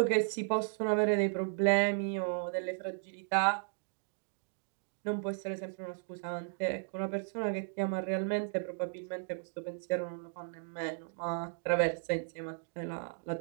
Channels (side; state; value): left; silent; digital silence